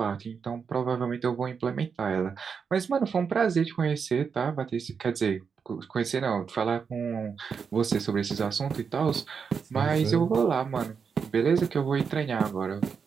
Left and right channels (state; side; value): quieter; left; 6.1 dB